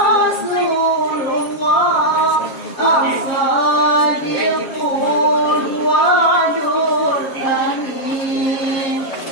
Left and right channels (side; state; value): right; late; 7.4 ms